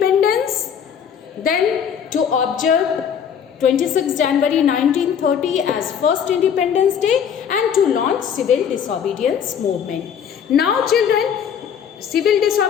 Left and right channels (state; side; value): quieter; right; 7.9 dB